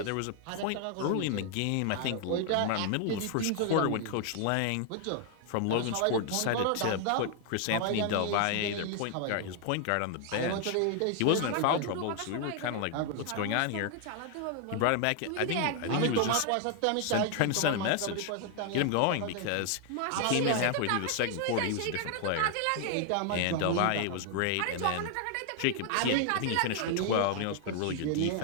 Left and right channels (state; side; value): different; both; correlation 0.00